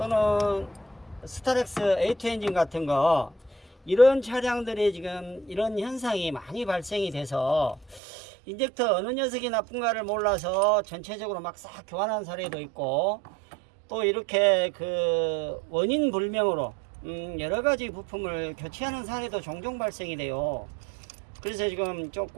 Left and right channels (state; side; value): drops out; left; at 8.0 s